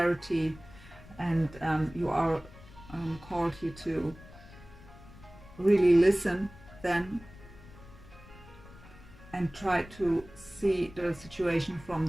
and you are called here to really listen then and try to see the situation from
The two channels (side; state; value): left; noise; rumble, 20 dB below the sound